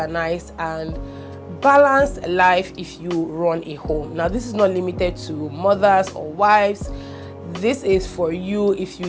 and balanced life if you run a home. Now, this is not limited to mothers or wives. This is for you if you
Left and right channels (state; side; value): identical; both; correlation 1.00